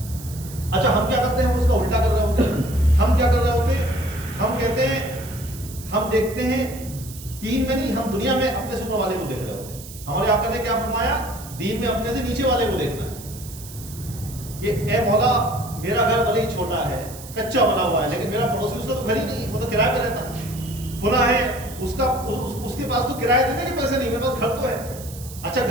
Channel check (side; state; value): right; noise; hiss, 15 dB below the sound